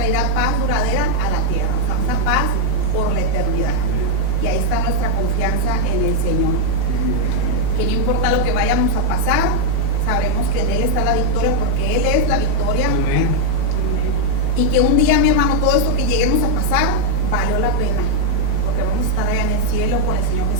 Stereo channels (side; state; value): both; different; correlation 0.00